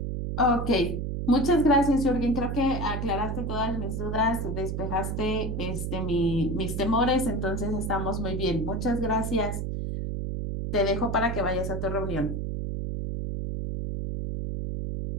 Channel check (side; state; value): right; noise; hum, 2 dB below the sound